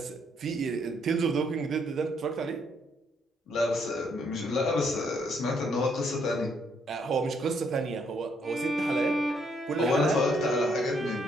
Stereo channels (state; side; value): normal; both; correlation 0.71